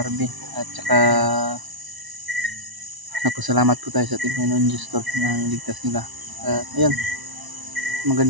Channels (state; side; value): late; left; 1.0 ms